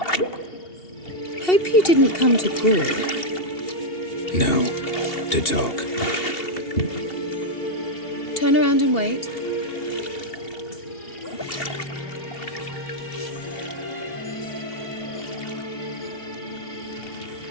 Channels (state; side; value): late; right; 2.7 ms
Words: Hope you didn't come to Gore. No. To talk. Turn around and wait.